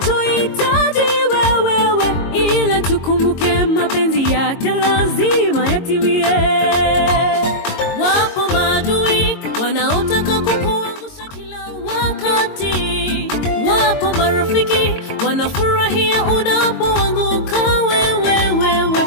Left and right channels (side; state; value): right; late; 22 ms